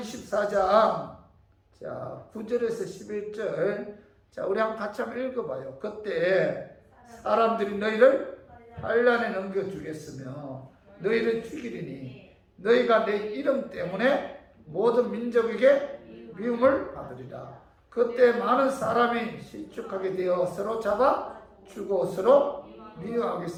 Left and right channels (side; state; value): both; identical; correlation 1.00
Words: 자, 9절에서 11절, 자, 우리 같이 한번 읽어봐요. 그때 사람들이 너희를 환난에 넘겨주겠으며 너희를 죽이리니 너희가 내 이름 때문에 모든 민족에게 미움을 받으리라. 그때 많은 사람이 실족하게 되어 서로 잡아 주고 서로